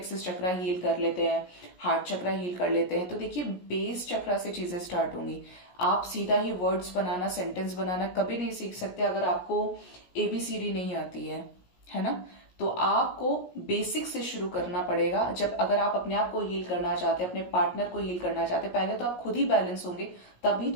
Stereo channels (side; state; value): right; late; 17 ms